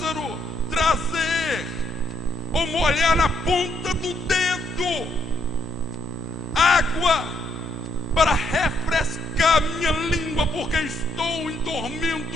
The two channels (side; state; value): left; noise; hum, 21 dB below the sound